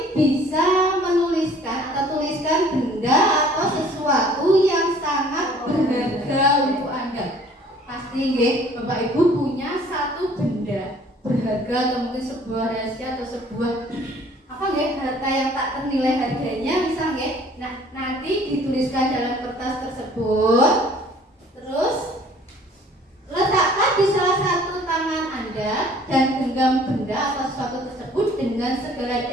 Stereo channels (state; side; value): normal; both; correlation 0.54